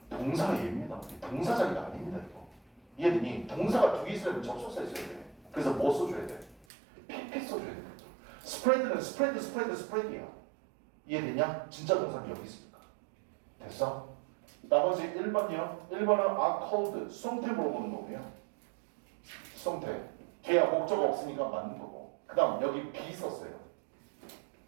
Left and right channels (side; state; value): left; drops out; at 6.7 s